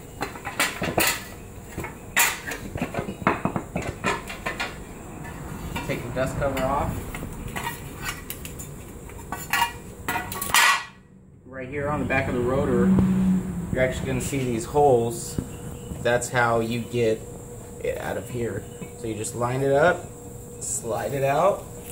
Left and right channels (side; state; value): both; identical; correlation 1.00